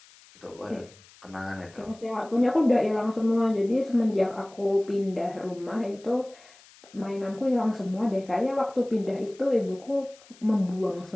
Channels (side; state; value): left; noise; hiss, 25 dB below the sound